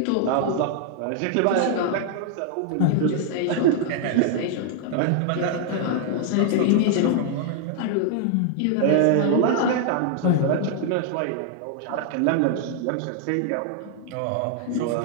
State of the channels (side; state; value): both; different; correlation 0.00